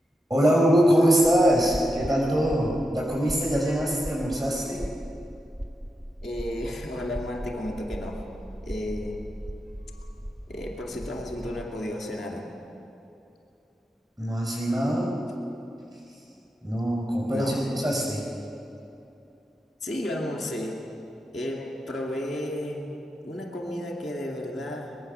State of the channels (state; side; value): normal; both; correlation 0.86